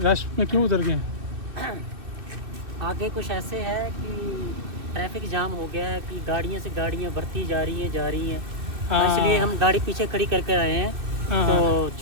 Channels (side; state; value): left; late; 2.5 ms